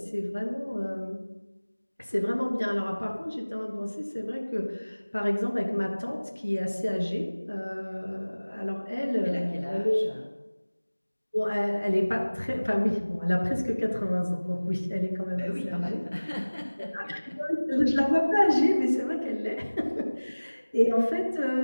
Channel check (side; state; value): both; inverted; correlation -1.00